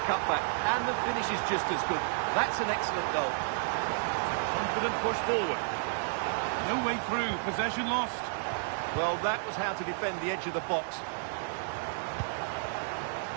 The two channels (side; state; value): left; silent; digital silence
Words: cutback, and the finish is just as good. That's an excellent goal. Confident push forward. No way through, possession lost. Well, that was how to defend the edge of the box.